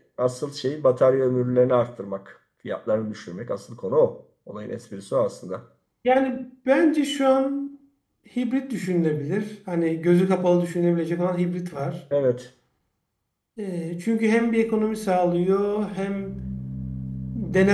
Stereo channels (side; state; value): both; identical; correlation 1.00